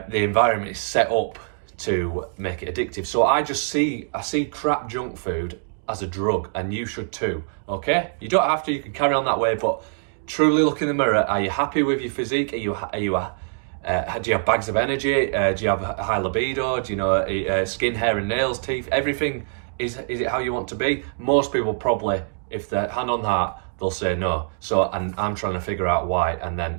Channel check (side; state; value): left; silent; digital silence